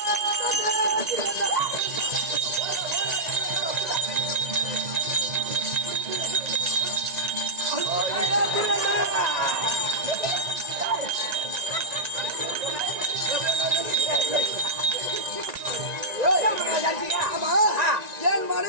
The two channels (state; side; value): late; left; 1.9 ms